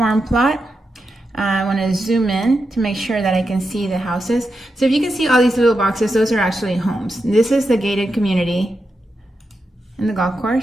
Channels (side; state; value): both; normal; correlation 0.87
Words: plot. I want to zoom in to make sure that I can see the houses. So if you can see all these little boxes, those are actually homes. This is the gated community and the golf